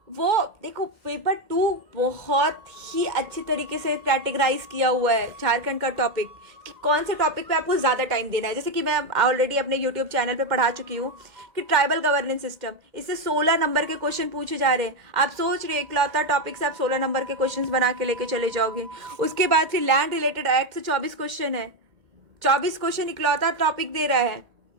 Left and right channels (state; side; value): late; left; 2.1 ms